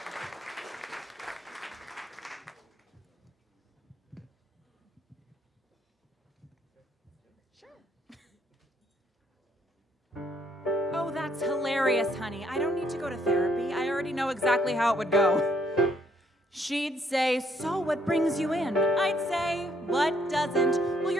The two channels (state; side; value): normal; both; correlation 0.70